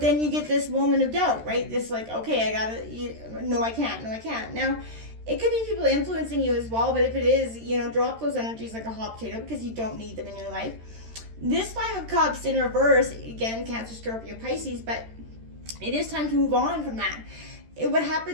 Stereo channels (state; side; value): late; left; 13 ms